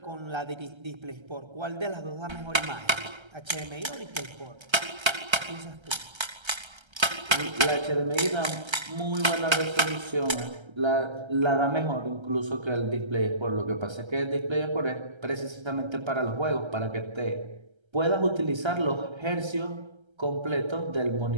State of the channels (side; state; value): left; late; 1.3 ms